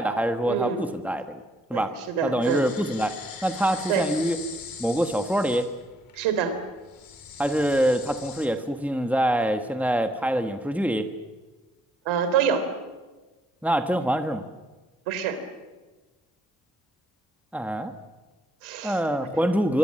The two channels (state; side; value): normal; both; correlation 0.69